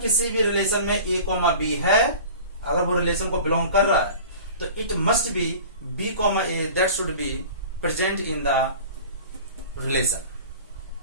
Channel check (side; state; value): both; inverted; correlation -0.40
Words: भी रिलेशन में a b है, अगर वो रिलेशन को बिलोंग कर रहा है तो it must be b a that should be present in the relation.